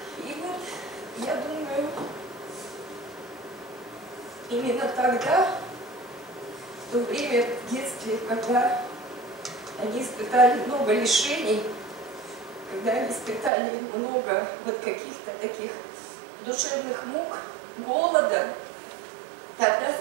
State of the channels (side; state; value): left; drops out; at 13.5 s